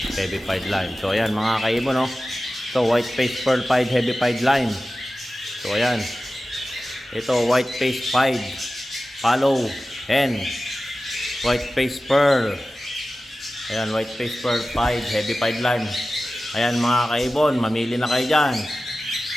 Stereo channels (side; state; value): both; normal; correlation 0.95